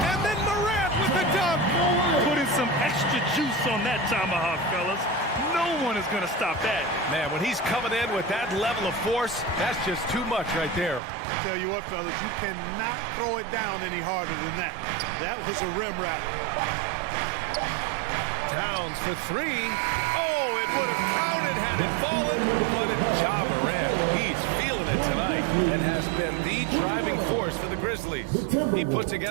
then Morant with the dunk. Putting some extra juice on that tomahawk, fellas. No one is going to stop that. Man, when he's coming in with that level of force, that's just too much right there. Tell you what, fellas, you cannot throw it down any harder than that. That was a rim wrap. Towns for 3. Oh, it would have counted had it fallen, but it's Ja Morant. He's feeling it tonight and has been the driving force for the Grizzlies. He put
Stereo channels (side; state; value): left; drops out; at 11.0 s